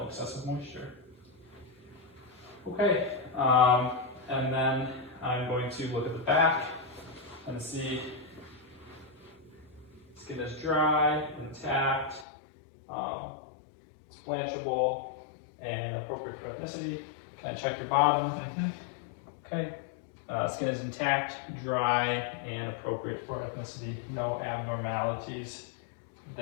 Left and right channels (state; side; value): drops out; right; at 12.2 s